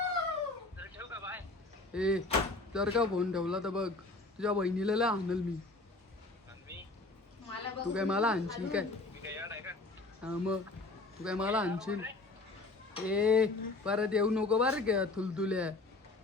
तर ठेवू का बाय. ए जर का फोन ठेवला तर बघ तुझ्या बहिणीला लय आणल मी. आणि मी तू काय मला आणशील काय? मी काय याड आहे का. हा मग तू काय मला आणशील? ए परत येऊ नको बरं का थुलथुल्या.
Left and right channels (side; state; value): right; quieter; 3.2 dB